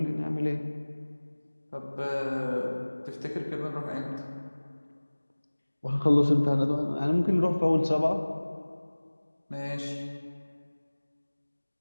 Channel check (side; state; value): both; inverted; correlation -1.00